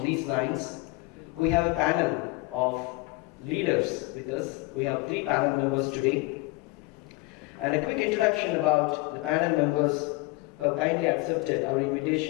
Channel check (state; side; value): quieter; right; 22.6 dB